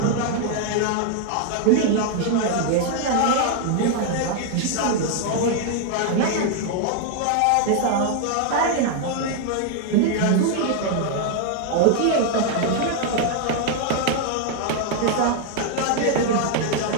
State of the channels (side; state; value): both; different; correlation 0.00